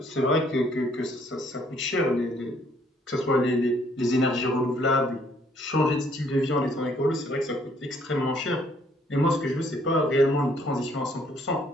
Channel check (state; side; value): normal; both; correlation 0.65